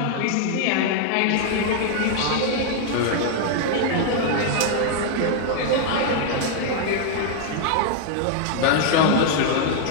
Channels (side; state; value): both; different; correlation 0.00